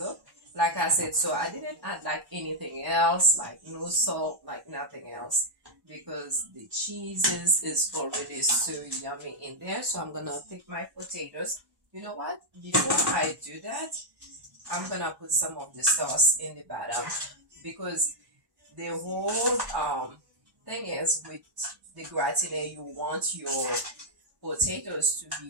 Like I said, so I didn't add like anything else, like no salt, like nothing else, because the cheeses is already so yummy in there. So I'm gonna take my potatoes. You know what? Before I do that, I'm gonna put some of the sauce in the bottom, because the whole thing is with the gratin, you want your potatoes to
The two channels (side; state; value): left; late; 1.1 ms